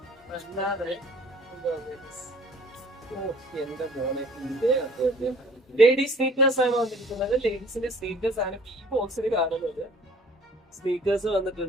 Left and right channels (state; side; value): normal; both; correlation 0.53